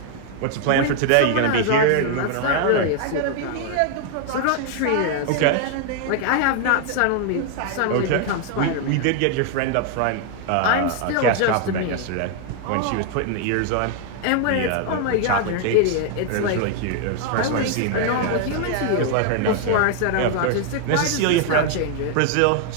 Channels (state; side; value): different; both; correlation 0.00